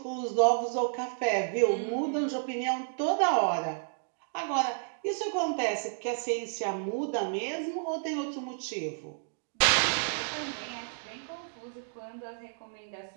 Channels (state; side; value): silent; left; digital silence